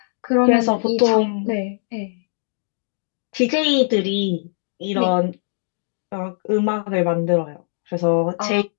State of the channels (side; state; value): right; silent; digital silence